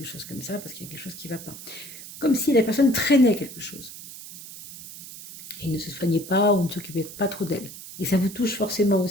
chose comme ça, parce qu'il y a quelque chose qui ne va pas. Comme si la personne traînait quelque chose et ne se soignait pas ou ne s'occupait pas trop d'elle. Et ça vous touche forcément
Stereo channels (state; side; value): noise; right; hiss, 14 dB below the sound